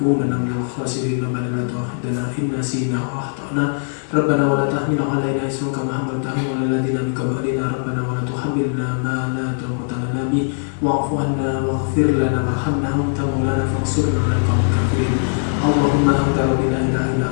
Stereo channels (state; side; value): silent; right; digital silence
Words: minal khasirin. Rabbana la tu'akhidhna in nasina aw akhtana. Rabbana wa la tahmil 'alaina isran kama hamaltahu 'alal ladzina min qablina. Rabbana wa la tuhammilna ma la taqata lana bihi wa'fu 'anna waghfir lana warhamna anta maulana fansurna 'alal qawmil kafirin. Allahumma anta la ilaha illa